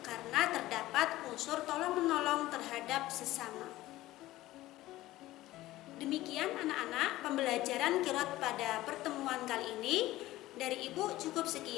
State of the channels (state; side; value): quieter; right; 16.6 dB